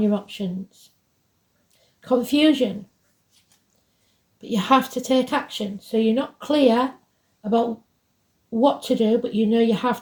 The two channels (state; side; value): identical; both; correlation 1.00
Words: options. Confusion, but you have to take action. So you're not clear about what to do, but you know you have